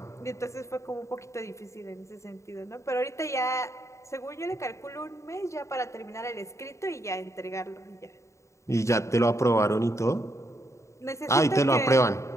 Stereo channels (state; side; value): late; right; 0.14 ms